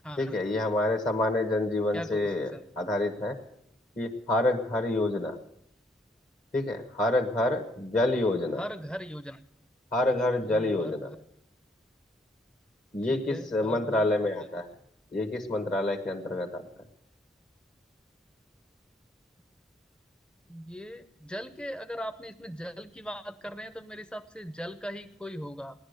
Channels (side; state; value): both; normal; correlation 0.68